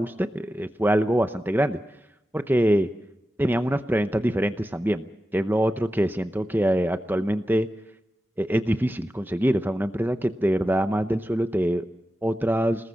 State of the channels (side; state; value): both; normal; correlation 0.92